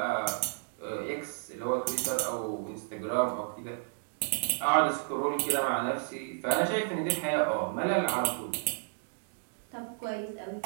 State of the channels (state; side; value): silent; left; digital silence